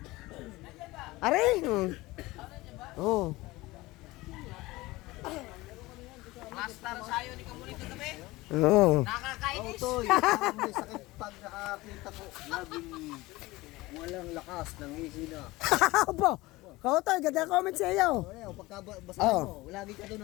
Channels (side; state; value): right; quieter; 20.1 dB